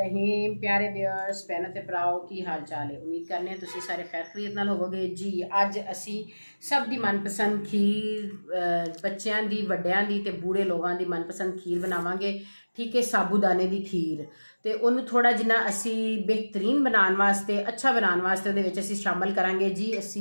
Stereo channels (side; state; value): both; inverted; correlation -1.00